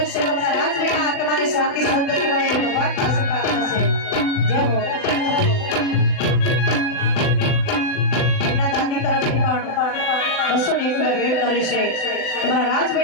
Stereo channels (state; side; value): late; right; 39 ms